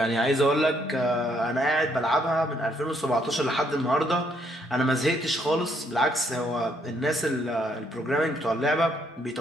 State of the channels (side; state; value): both; normal; correlation 0.71